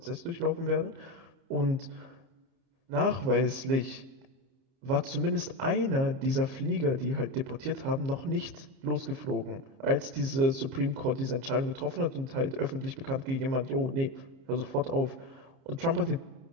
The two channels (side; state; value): left; late; 29 ms